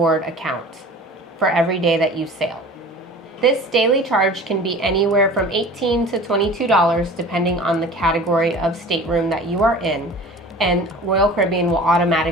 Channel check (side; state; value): both; normal; correlation 0.41